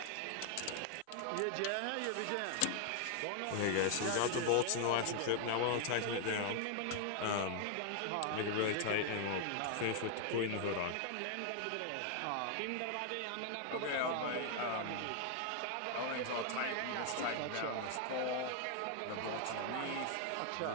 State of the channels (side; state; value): both; different; correlation 0.00